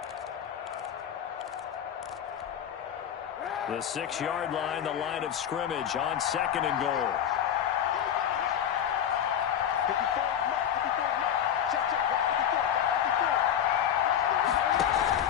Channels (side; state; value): right; quieter; 9.4 dB